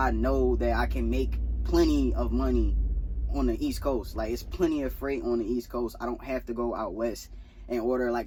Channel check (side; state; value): both; identical; correlation 1.00